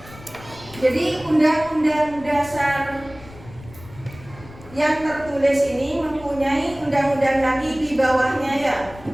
Jadi Undang-Undang Dasar yang tertulis ini mempunyai undang-undang lagi di bawahnya ya.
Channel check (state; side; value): noise; left; rumble, 19 dB below the sound